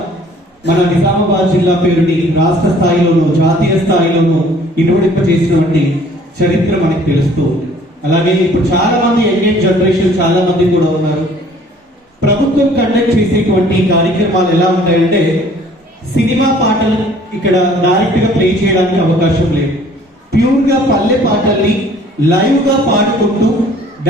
మన నిజామాబాద్ జిల్లా పేరుని రాష్ట్ర స్థాయిలోనూ జాతీయ స్థాయిలోనూ ఇనుమడింప చేసినటువంటి చరిత్ర మనకి తెలుస్తూ ఉంది. అలాగే ఇప్పుడు చాలా మంది యంగ్ జనరేషన్ చాలా మంది కూడా ఉన్నారు. ప్రభుత్వం కండక్ట్ చేసేటువంటి కార్యక్రమాలు ఎలా ఉంటాయంటే సినిమా పాటలు ఇక్కడ డైరెక్ట్ గా ప్లే చేయడానికి అవకాశం లేదు. ప్యూర్ గా పల్లె పాటల్ని లైవ్ గా పాడుకుంటూ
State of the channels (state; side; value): normal; both; correlation 0.55